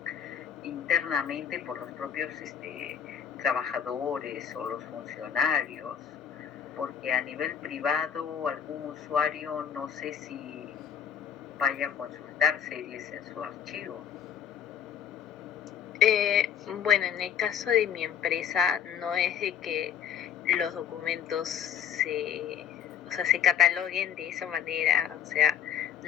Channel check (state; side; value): quieter; right; 8.7 dB